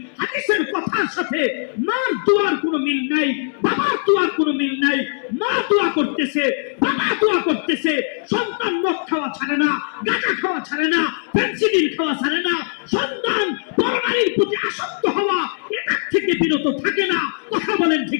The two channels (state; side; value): silent; right; digital silence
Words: হাদিসের কথার সাথে মার দোয়ার কোনো মিল নাই, বাবার দোয়ার কোনো মিল নাই। মা দোয়া করতেছে, বাবা দোয়া করতেছে, সন্তান মদ খাওয়া ছাড়ে না, গাঁজা খাওয়া ছাড়ে না, ফেন্সিডিল খাওয়া ছাড়ে না, সন্তান পরনারীর প্রতি আসক্ত হওয়া এটার থেকে বিরত থাকে না। কথা বলেন